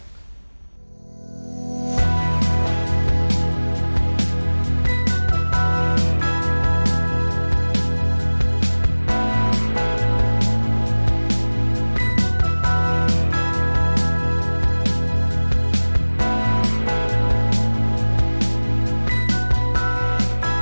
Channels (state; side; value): inverted; both; correlation -1.00